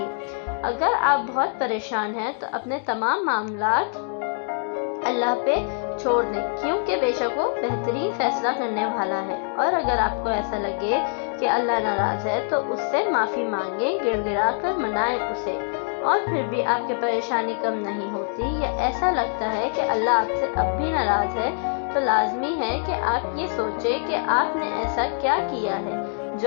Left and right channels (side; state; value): right; silent; 61 dB below the other